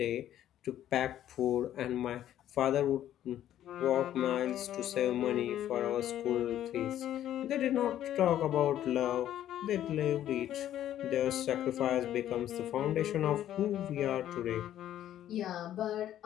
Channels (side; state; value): right; quieter; 11.8 dB